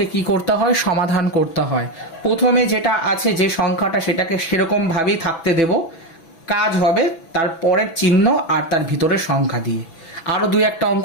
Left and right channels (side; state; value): right; late; 6.0 ms